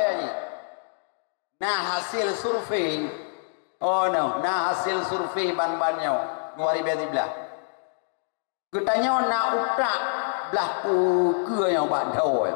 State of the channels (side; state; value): right; silent; digital silence